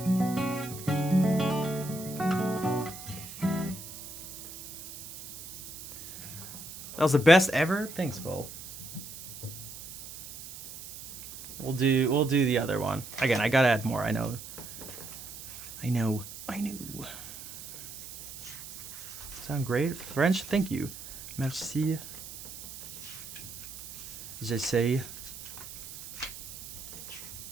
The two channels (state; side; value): noise; right; hiss, 13 dB below the sound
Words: That was the best ever? Thanks, Vol. We'll do the other one. Again, I gotta add more, I know. Sound great? French? Thank you. Merci. J'essaie.